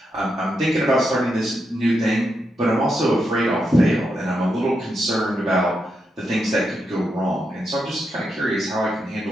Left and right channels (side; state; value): both; normal; correlation 0.84